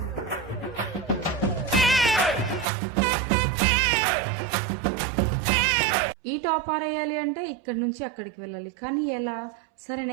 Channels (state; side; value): drops out; left; at 2.7 s